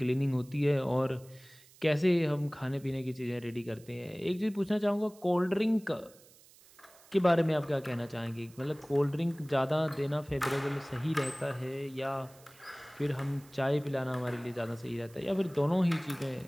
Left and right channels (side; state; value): right; noise; hiss, 25 dB below the sound